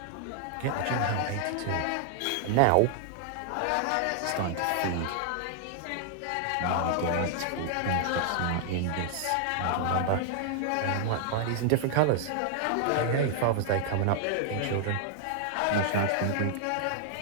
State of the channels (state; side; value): different; both; correlation 0.00